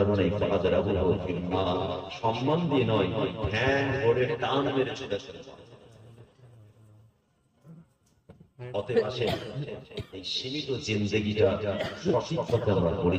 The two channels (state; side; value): identical; both; correlation 1.00